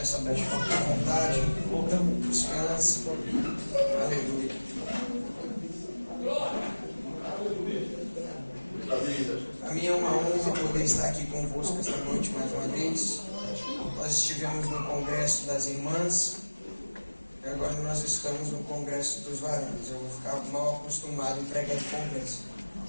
noite, com vontade, descanse. Aleluia. A mim é uma honra poder estar aqui convosco esta noite mais uma vez. Nós estivemos no Congresso das Irmãs e agora nós estamos no Congresso dos Varões. Eu vou ficar mal acostumado em pregar em congresso.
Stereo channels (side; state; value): both; inverted; correlation -1.00